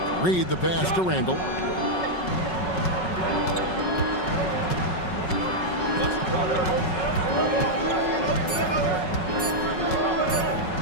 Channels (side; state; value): right; late; 5.4 ms